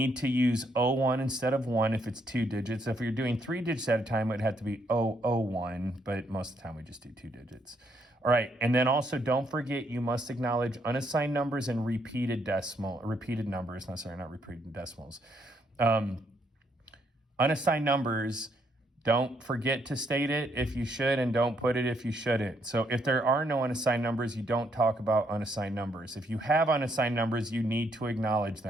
to use O1 instead of 1 if it's 2 digits. If you're doing 3 digits at a time, it would have to be O01, but most of the time we just do 2 digits. All right, and then also don't forget you must acknowledge unassigned numbers and repeated numbers. No, sorry, not repeated decimals. Unassigned numbers, don't forget to state it if you should, and don't put it if you shouldn't. So if there are no unassigned numbers, you don't talk about unassigned numbers. If you have unassigned numbers, you need to acknowledge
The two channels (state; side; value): normal; both; correlation 0.73